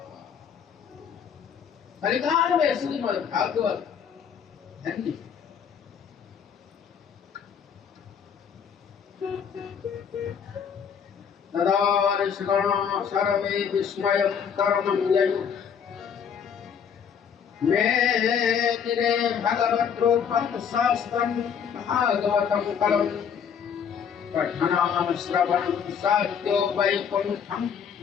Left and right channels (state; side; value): quieter; right; 7.4 dB